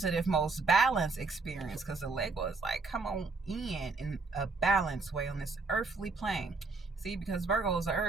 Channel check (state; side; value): quieter; left; 4.0 dB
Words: most balanced experience, because the Lego is like, come on in a balanced way on this earthly plane. See, because Virgo is an